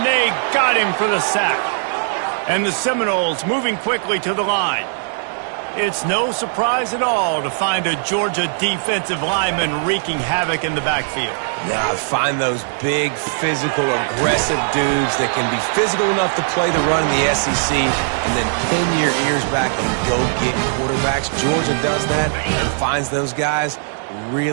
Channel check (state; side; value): silent; left; digital silence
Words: they got him for the sack. And the Seminoles moving quickly to the line. It's no surprise at all to find a Georgia defensive lineman wreaking havoc in the backfield. Yeah, find those big, physical, aggressive dudes that can be physical enough to play the run in the SEC and then pin your ears back and go get quarterbacks. Georgia does that and finds those guys